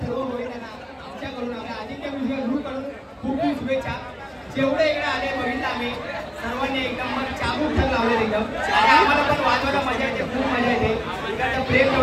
सर्व महिलांना आमच्याकडून आपल्या आदित्य म्युझिक ग्रुपकडून खूप खूप शुभेच्छा. जेवढे इकडे आले बघितलं आम्ही सर्वांनी एकदम मग चाबूक ठर लावले एकदम. आणि आम्हाला पण वाजवायला मजा येते, खूप मजा येते. इकडचं प्रेम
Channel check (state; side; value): identical; both; correlation 1.00